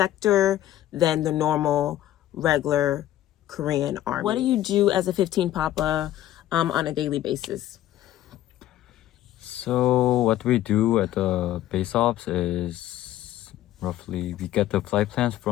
than the normal, regular Korean Army. What do you do as a 15 Papa on a daily basis? So what we do at the base ops is roughly we get the flight plans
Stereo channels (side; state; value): right; quieter; 13.3 dB